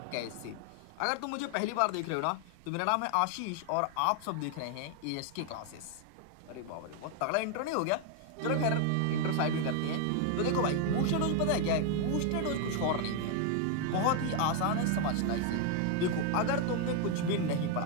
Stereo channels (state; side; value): different; both; correlation 0.01